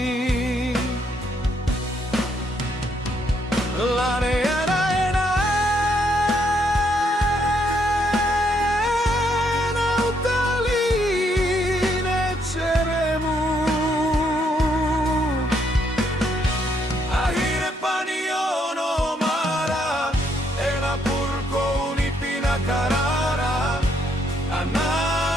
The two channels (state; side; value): normal; both; correlation 0.73